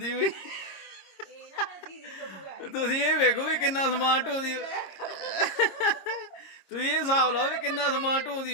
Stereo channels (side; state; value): right; late; 26 ms